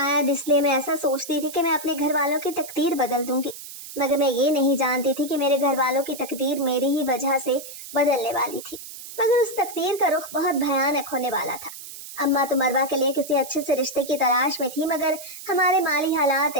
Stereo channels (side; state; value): right; noise; hiss, 13 dB below the sound